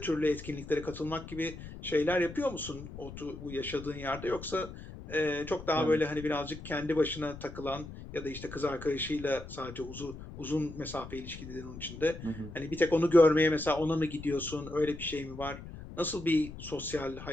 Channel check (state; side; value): noise; left; rumble, 12 dB below the sound